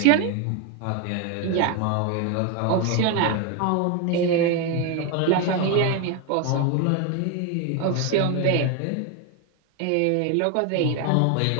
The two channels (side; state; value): both; different; correlation 0.01